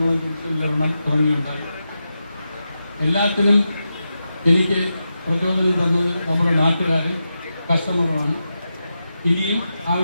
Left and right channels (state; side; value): inverted; both; correlation -0.89